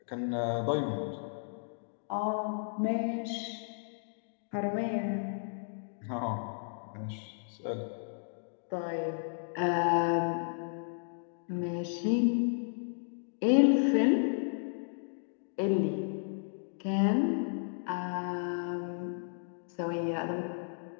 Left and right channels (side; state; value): right; silent; digital silence